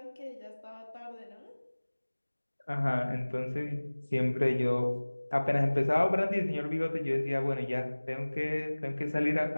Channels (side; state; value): both; inverted; correlation -1.00